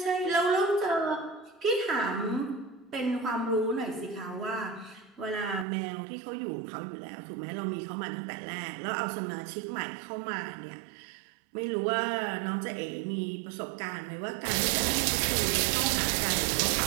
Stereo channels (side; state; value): left; drops out; at 5.7 s